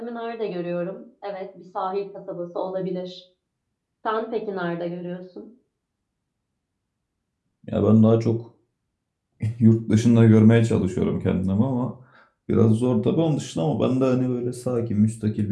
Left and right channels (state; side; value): identical; both; correlation 1.00